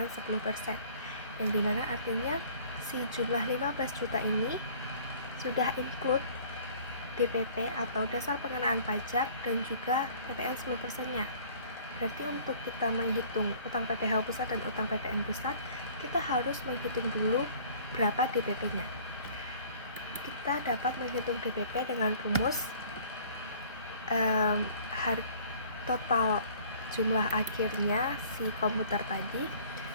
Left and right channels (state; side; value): inverted; both; correlation -0.52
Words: 10%, yang dimana artinya si jumlah 15 juta ini sudah include DPP atau dasar pengenaan pajak dan juga PPN 10%-nya. Berarti untuk kita menghitung utang PPH pusat dan utang PPN pusat, kita harus menghitung dulu berapa DPP-nya. Kita dapat menghitung DPP dengan rumus total jumlah akhirnya si komputer tadi